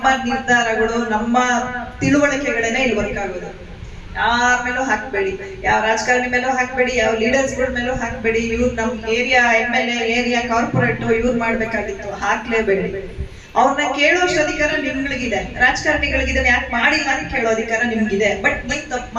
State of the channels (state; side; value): identical; both; correlation 1.00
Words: ನಿರ್ಧಾರಗಳು, ನಮ್ಮ ತಿಳುವಳಿಕೆಗಳೇನೆ ಇಲ್ಲಿ ವರ್ಕ್ ಆಗೋದು. ಯಾರ ಮೇಲೂ ಹಾಕ್ಬೇಡಿ, ಯಾವ ರಾಜಕಾರಣಿ ಮೇಲೂ ಹಾಕ್ಬೇಡಿ, ಯಾವ ಲೀಡರ್ಸ್ಗಳ ಮೇಲೂ ಹಾಕ್ಬೇಡಿ. ಇವ್ರು ನಮ್ ಏರಿಯಾ MLA, ಏರಿಯಾ ಕಾರ್ಪೊರೇಟ್ ಇವ್ರು ಮಾಡ್ಬೇಕಾಗಿತ್ತು, ಹಾಕ್ಲೇಬೇಡಿ. ಅವ್ರನ್ನ ಕೇಳೋಷ್ಟು ಅಧಿಕಾರ ನಿಮ್ಗಳಿಗಿದೆ, ರಾಜಕಾರಣಿಗಳಿಗಿದೆ. ಯಾಕೆ ಮಾಡಿಲ್ಲ ಅಂತ ಕೇಳೋ ಅಧಿಕಾರ ನಿಮ್ಗಿದೆ. ಬಟ್ ನೀವ್ ತಪ್ಪು